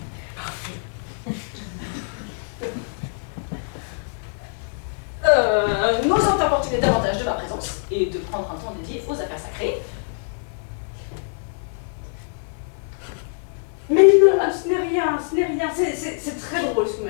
N'osant importuner davantage de ma présence et de prendre un temps dédié aux affaires sacrées. Mais non, ce n'est rien, ce n'est rien. C'est très drôle ce que vous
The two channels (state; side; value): silent; right; digital silence